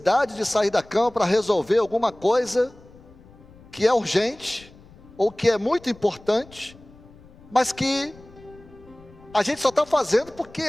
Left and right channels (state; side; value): noise; left; rumble, 23 dB below the sound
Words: de sair da cama para resolver alguma coisa que é urgente, ou que é muito importante, mas que a gente só está fazendo porque